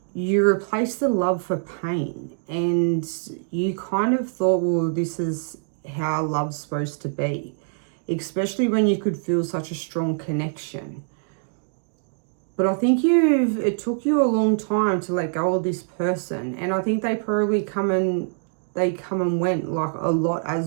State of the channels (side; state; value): left; silent; digital silence